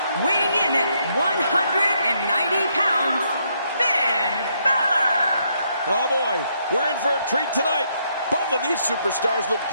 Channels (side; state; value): both; inverted; correlation -0.74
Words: weighing in at 190 pounds, Finn Balor. Oh boy, we're in for a treat tonight. Both of these superstars look